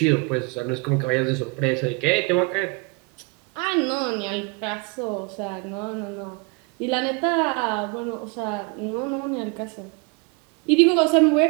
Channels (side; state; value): left; quieter; 30.1 dB